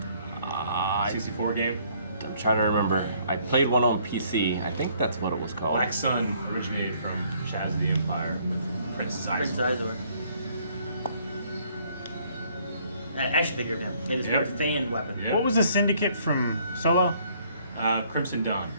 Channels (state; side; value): inverted; both; correlation -0.64